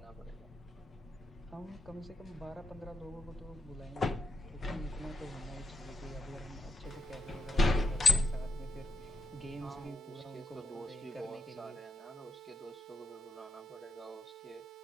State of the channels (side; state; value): both; normal; correlation 0.85